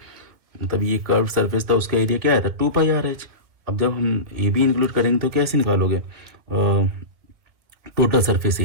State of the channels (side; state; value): left; late; 2.0 ms